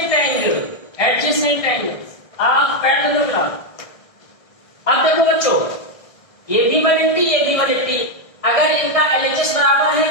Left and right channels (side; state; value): right; late; 1.6 ms